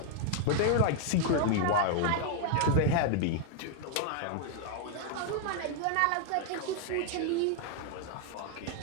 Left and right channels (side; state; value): both; different; correlation 0.00